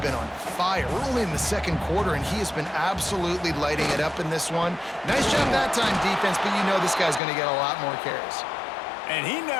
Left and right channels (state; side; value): drops out; right; at 7.2 s